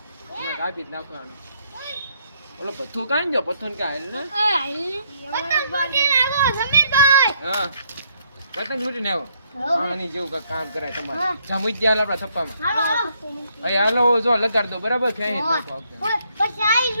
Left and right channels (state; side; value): inverted; both; correlation -0.71